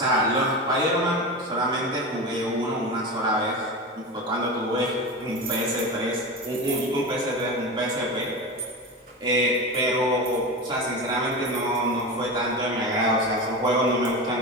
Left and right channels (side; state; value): both; normal; correlation 0.24